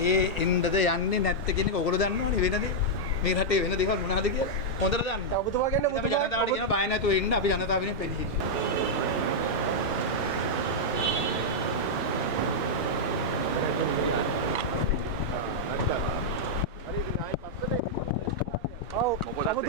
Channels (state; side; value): normal; both; correlation -0.05